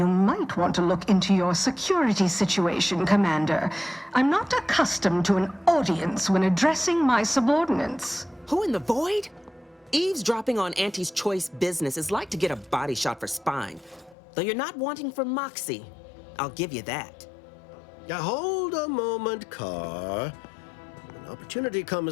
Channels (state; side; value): drops out; right; at 14.2 s